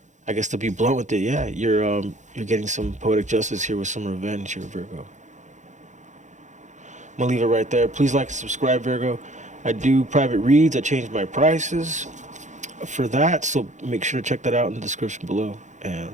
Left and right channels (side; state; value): left; late; 0.35 ms